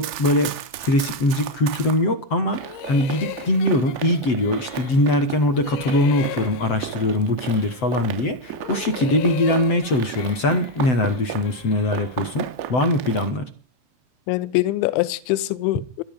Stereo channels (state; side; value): late; right; 7.9 ms